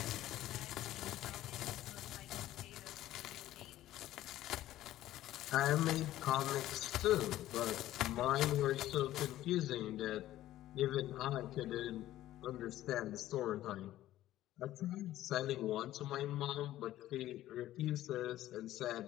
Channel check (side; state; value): right; quieter; 14.2 dB